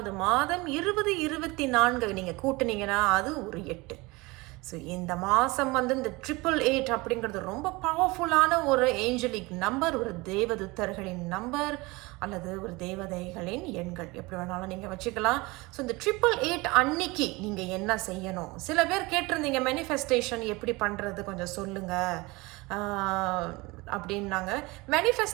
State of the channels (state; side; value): quieter; left; 23.5 dB